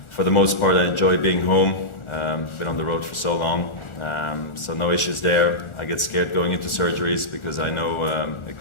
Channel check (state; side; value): late; right; 1.4 ms